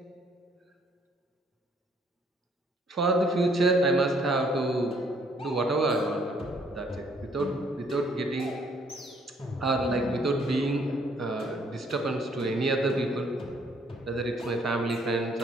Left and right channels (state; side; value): normal; both; correlation 0.65